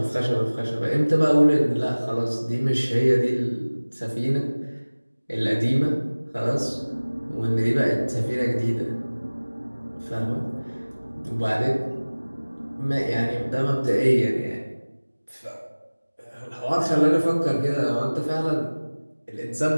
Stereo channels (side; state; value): both; inverted; correlation -1.00